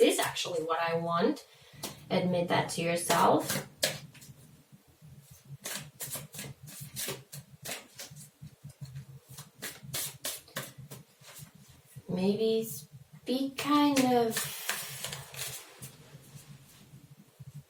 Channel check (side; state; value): both; identical; correlation 1.00